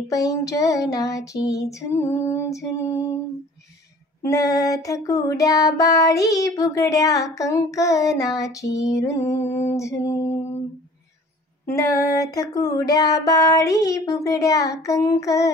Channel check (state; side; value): normal; both; correlation 0.48